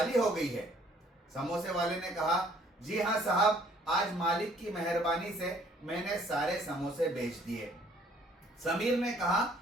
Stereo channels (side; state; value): both; normal; correlation 0.60